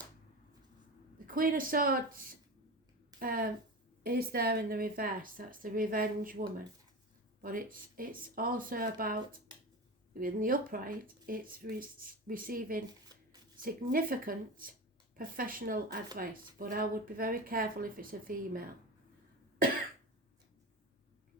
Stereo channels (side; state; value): both; normal; correlation 0.26